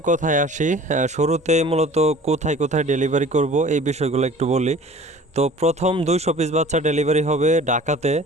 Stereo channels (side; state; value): both; normal; correlation 0.46